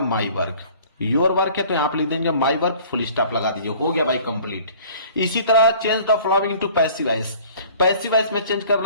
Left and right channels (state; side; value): inverted; both; correlation -0.50